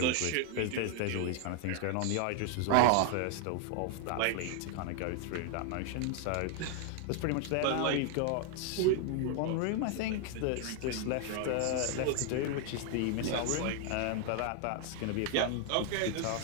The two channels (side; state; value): both; different; correlation 0.00